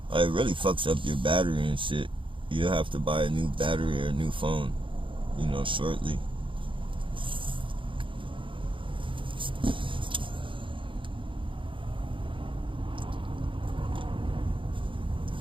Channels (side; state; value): left; late; 0.25 ms